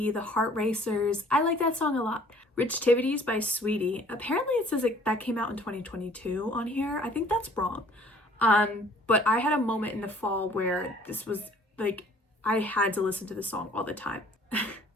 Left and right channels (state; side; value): normal; both; correlation 0.55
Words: The Heart Racers. I like that song a lot. Rich Tivities by Sweetie. Apparently it says that came out in 2022 on here. I think that's wrong. But I had a moment in the fall where this was like, I had to listen to this song all the time.